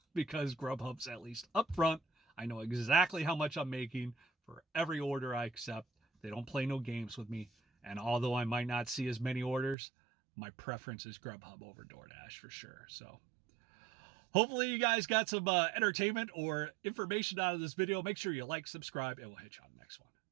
because Grubhub's at least upfront. I know exactly how much I'm making for every order I accept. They don't play no games with me. And although I might not see as many orders, my preference is Grubhub over DoorDash for sure. So hopefully you guys got some entertainment or information out of this video. Make sure you like, subscribe, and we'll hit you on the next one.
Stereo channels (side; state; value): left; drops out; at 9.8 s